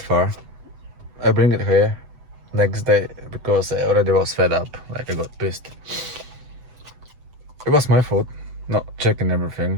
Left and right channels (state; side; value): late; left; 8.0 ms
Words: far. I bring it here next day because I already was fed up. Like I got pissed. It was my fault not checking